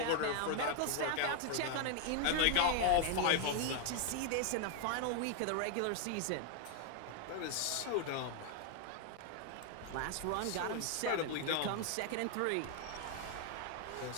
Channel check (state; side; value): different; both; correlation 0.00